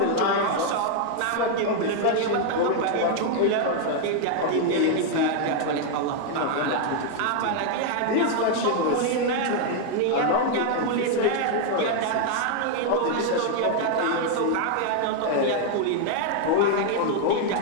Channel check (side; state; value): both; different; correlation 0.00